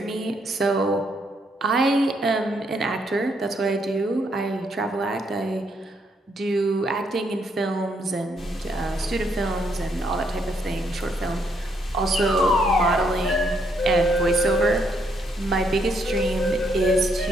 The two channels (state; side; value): normal; both; correlation 0.73